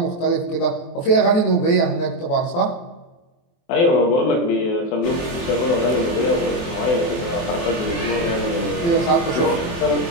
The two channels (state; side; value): late; right; 23 ms